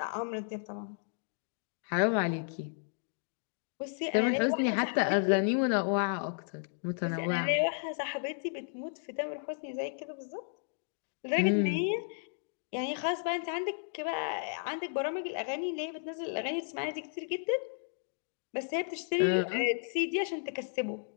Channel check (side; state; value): right; silent; digital silence